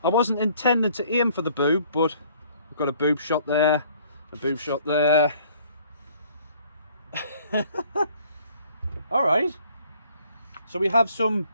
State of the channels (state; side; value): inverted; both; correlation -0.58